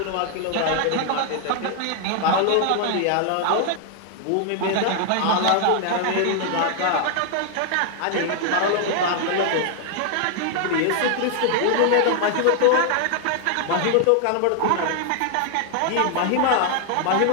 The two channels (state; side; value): different; both; correlation 0.00